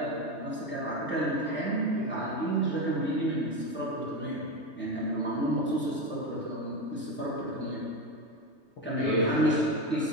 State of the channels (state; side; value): late; right; 3.2 ms